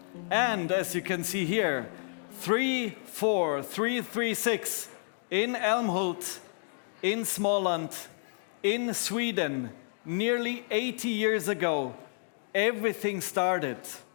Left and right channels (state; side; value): silent; right; digital silence